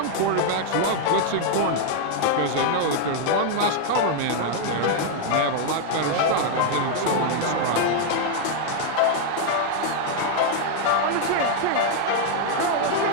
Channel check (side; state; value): both; different; correlation 0.00